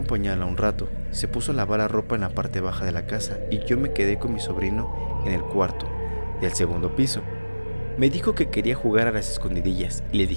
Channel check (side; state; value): both; inverted; correlation -1.00